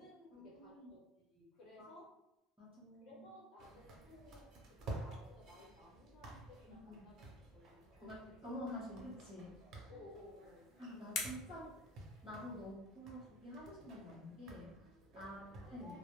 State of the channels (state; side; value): normal; both; correlation 0.41